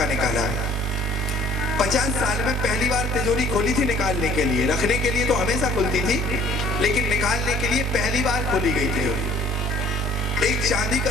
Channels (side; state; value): both; normal; correlation 0.54